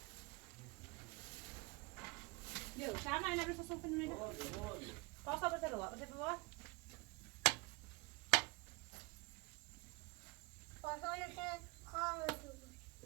يو شو عملنا بس صوفنا من هنا قاصة بتروى بتروى پاسانش خاموش بود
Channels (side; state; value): left; quieter; 26.5 dB